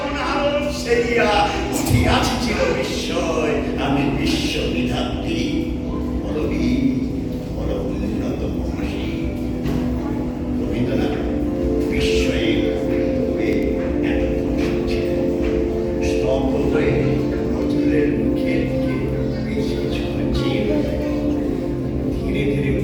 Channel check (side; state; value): both; identical; correlation 1.00